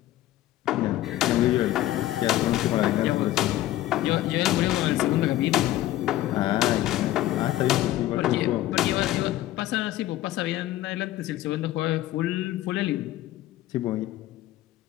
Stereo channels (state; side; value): quieter; right; 14.8 dB